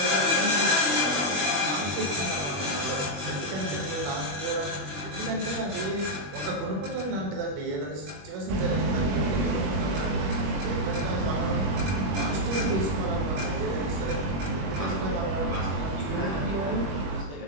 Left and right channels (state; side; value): late; left; 21 ms